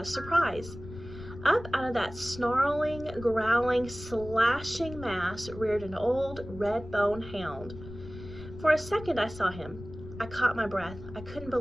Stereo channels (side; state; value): left; noise; rumble, 14 dB below the sound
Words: a surprise. Up out of that snarling, growling, slashing mass reared an old red-bone hound. For a second I saw him. I caught my breath. I couldn't